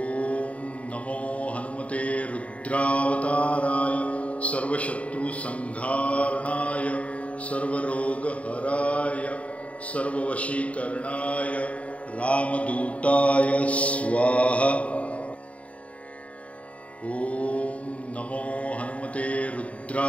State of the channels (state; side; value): late; right; 0.065 ms